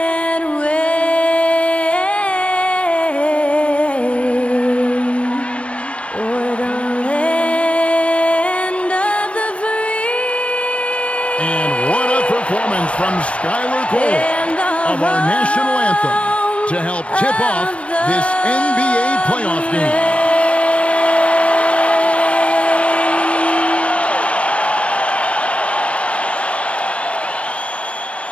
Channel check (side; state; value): right; late; 0.062 ms